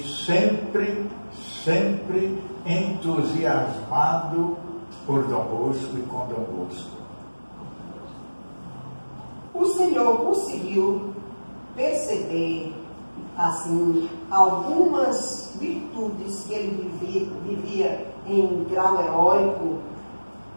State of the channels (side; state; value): both; inverted; correlation -1.00